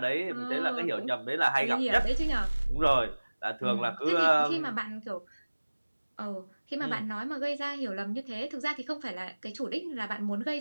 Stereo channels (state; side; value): inverted; both; correlation -1.00